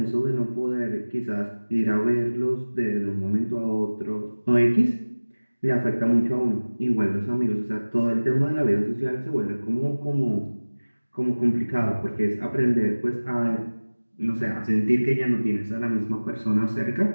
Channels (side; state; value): both; inverted; correlation -1.00